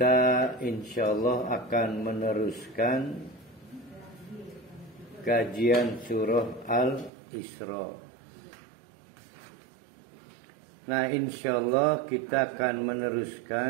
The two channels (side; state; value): left; drops out; at 7.1 s